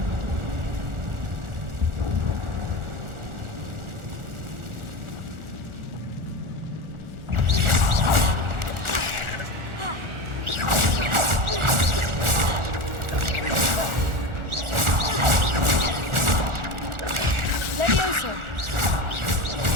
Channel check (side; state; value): left; late; 1.4 ms